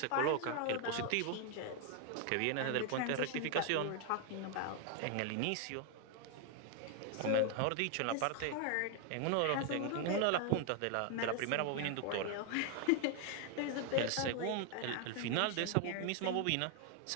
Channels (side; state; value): both; different; correlation 0.00